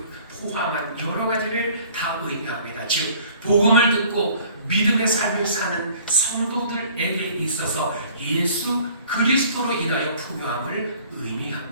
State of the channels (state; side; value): inverted; both; correlation -0.53